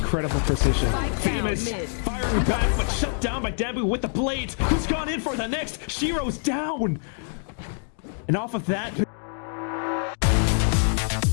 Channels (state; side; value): silent; right; 62 dB below the other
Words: precision. Famous firing back, but shut down by Danby with the blades. Who's gone in for the next? Shiro's down. And off of that...